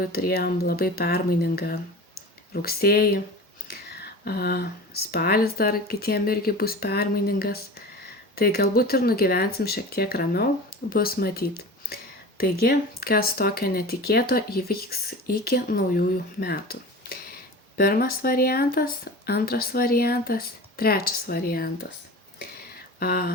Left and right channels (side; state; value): both; normal; correlation 0.34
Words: turėjom labai permainingą rugsėjį. Spalis dar kitiem irgi bus permainingas. Tai galbūt ir nugyvensim šiek tiek ramiau, bus matyt. Taigi, kas tokio netikėto įvyks iki naujųjų metų. Pirmas variantas, antras variantas, trečias variantas.